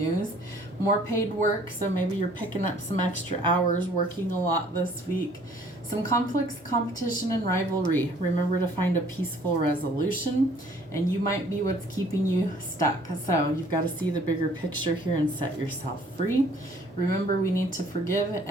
More paid work, so maybe you're picking up some extra hours, working a lot this week. Some conflicts, competition, and rivalry. Remember to find a peaceful resolution, and you might be what's keeping you stuck. So you've got to see the bigger picture here and set yourself free. Remember, we need to forgive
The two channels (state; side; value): normal; both; correlation 0.57